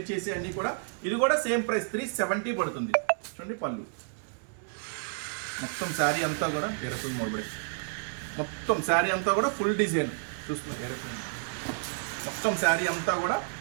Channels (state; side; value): silent; left; digital silence